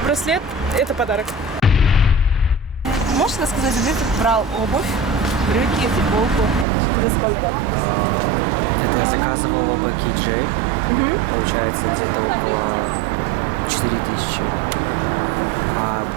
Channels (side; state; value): left; drops out; at 6.7 s